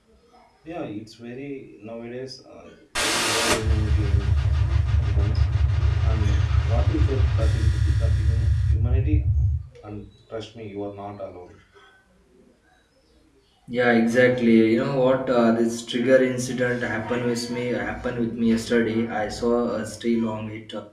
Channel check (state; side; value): identical; both; correlation 1.00